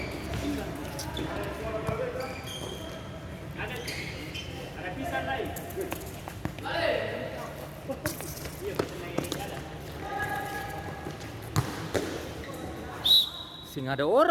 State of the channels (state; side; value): identical; both; correlation 1.00